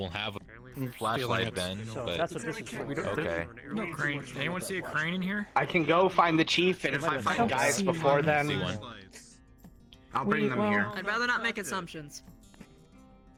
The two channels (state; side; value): identical; both; correlation 1.00